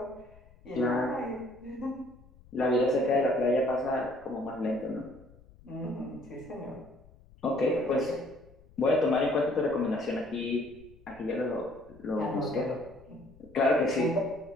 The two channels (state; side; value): noise; left; rumble, 24 dB below the sound